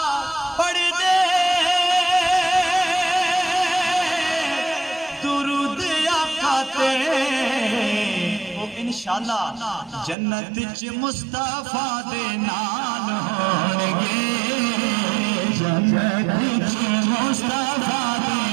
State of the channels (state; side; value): drops out; left; at 10.2 s